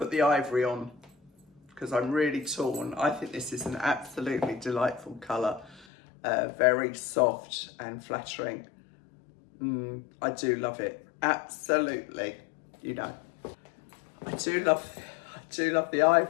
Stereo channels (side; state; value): right; drops out; at 5.9 s